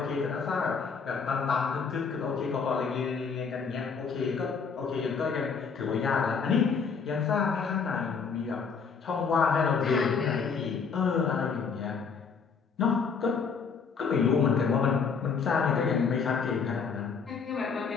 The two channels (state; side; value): quieter; right; 5.7 dB